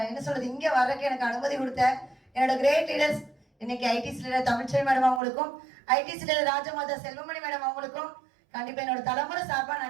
என்ன சொல்றது, இங்கே வர்றதுக்கு எனக்கு அனுமதி கொடுத்த என்னோட கிரேட் லீடர்ஸ், இன்னைக்கு ஐடிசி லீடர் தமிழ்ச்செல்வி மேடம் அவங்களுக்கும், ITC leader Rajmata Selvamani madam அவங்களுக்கும் கண்டிப்பா என்னோட தலைமுறை சார்பா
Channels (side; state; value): left; drops out; at 5.2 s